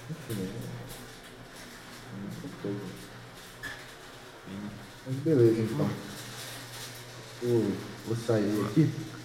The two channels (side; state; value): both; identical; correlation 1.00